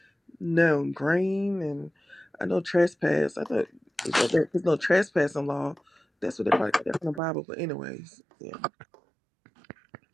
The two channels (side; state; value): left; drops out; at 7.2 s